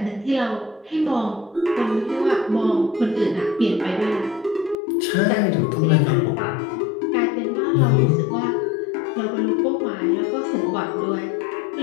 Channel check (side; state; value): right; drops out; at 4.8 s